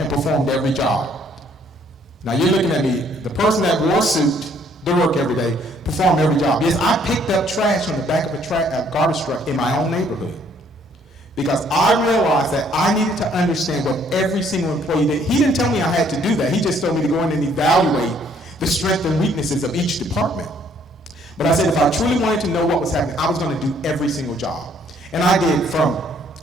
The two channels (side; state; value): both; normal; correlation 0.64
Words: performed every job. Now you're looking at me, the person that wore a suit to work every day, perform every job. Yes, I picked up trash on the back of a garbage truck in my own neighborhood because I realized that I needed to understand what every single employee did. He didn't tell me I had to do that. He just told me to go in and evaluate the strengths and weaknesses of each department. But I said if I truly wanted to know what was happening, I was going to do every single job. And I did, from